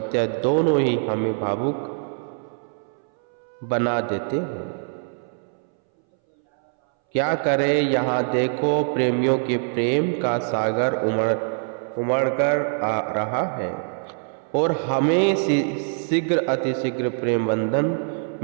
दोनों ही हमें भावुक बना देते हैं। क्या करें, यहाँ देखो प्रेमियों के प्रेम का सागर उमड़ कर आ रहा है और हमें शीघ्र अतिशीघ्र प्रेम बंधन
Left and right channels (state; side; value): silent; left; 62 dB below the other